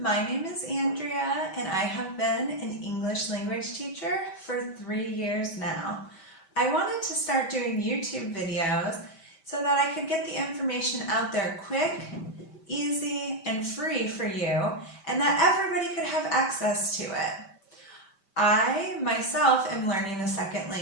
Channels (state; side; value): late; right; 5.1 ms